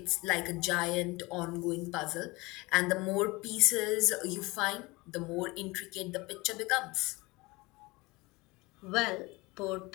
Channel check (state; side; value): quieter; right; 23.4 dB